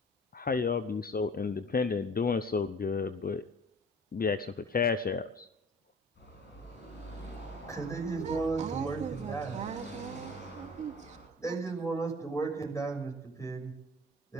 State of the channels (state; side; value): normal; both; correlation 0.45